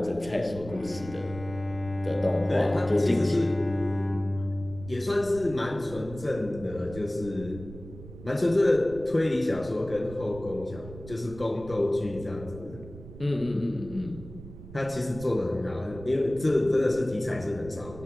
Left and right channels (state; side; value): noise; right; rumble, 15 dB below the sound